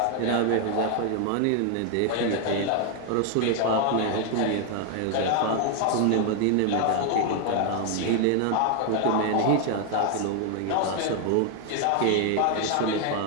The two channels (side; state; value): both; different; correlation 0.00